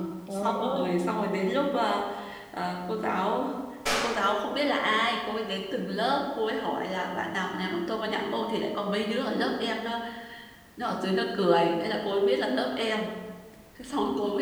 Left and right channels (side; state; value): both; identical; correlation 1.00